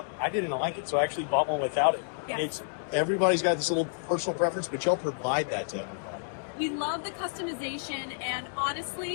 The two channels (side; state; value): right; silent; digital silence